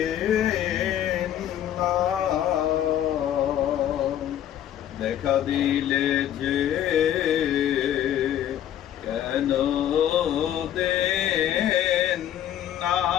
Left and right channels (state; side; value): quieter; right; 11.1 dB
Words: না, দেখা দিলে যে কেন দেন না,